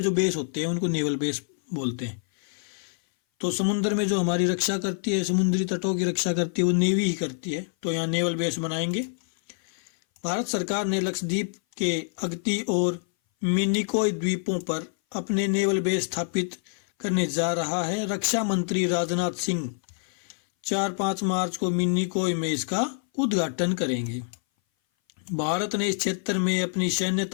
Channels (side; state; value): right; silent; 58 dB below the other